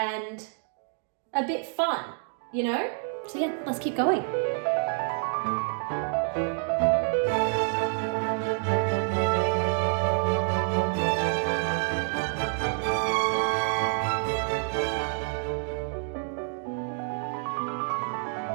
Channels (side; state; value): left; silent; 59 dB below the other